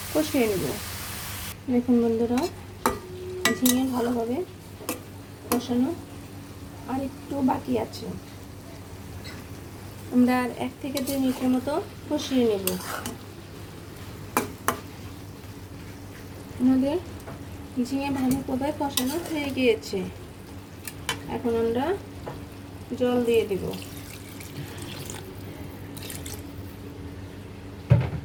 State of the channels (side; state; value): both; identical; correlation 1.00